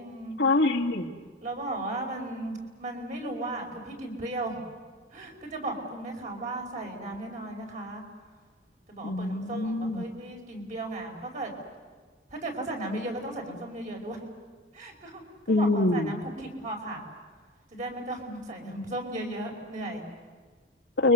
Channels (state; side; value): normal; both; correlation 0.27